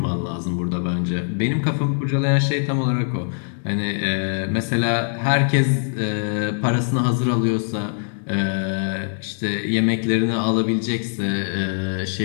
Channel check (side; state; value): right; silent; 64 dB below the other